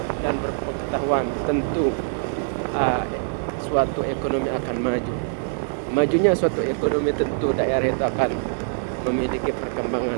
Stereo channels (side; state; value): left; silent; digital silence